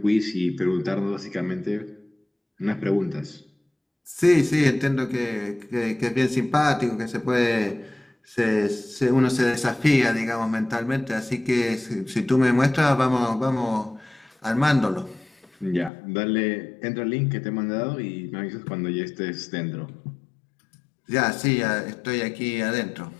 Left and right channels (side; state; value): right; drops out; at 15.9 s